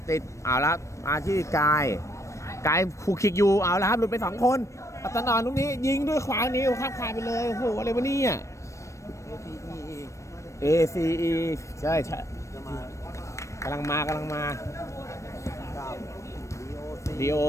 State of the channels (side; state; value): right; late; 0.15 ms